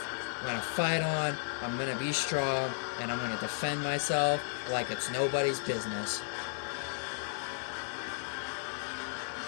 I'm gonna fight on, I'm gonna be strong, and I'm gonna defend myself like it's nobody's business.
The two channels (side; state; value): right; silent; digital silence